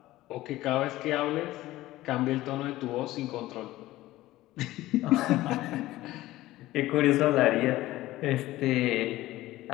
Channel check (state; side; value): quieter; right; 16.6 dB